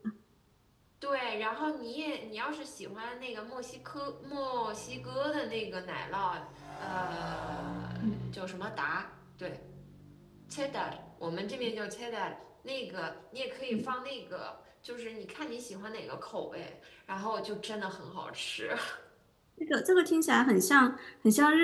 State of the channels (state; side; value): identical; both; correlation 1.00